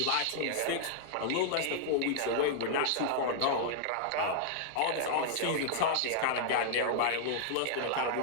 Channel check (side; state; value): both; different; correlation -0.01